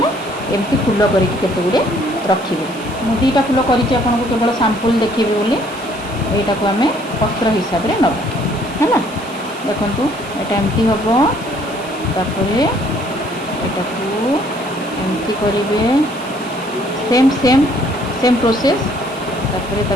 एमती फूल करिकी केते गुडे रखिबे। मु दीटा फूल करिछि, आपन को केवल सैंपल देखिबे बोली। एटा को हमें पत्र हिसाब रे नबा। हैना, देखंतु एटा एमती हबो। तापरे एटा को एमती करिवे, सेम प्रोसेस। तापरे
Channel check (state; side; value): noise; right; hiss, 20 dB below the sound